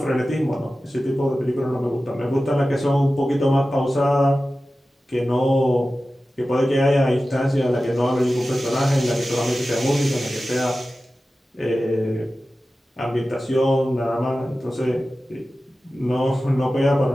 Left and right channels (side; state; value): both; normal; correlation 0.95